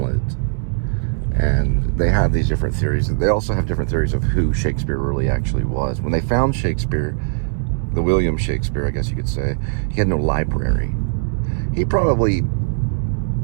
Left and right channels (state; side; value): silent; left; 64 dB below the other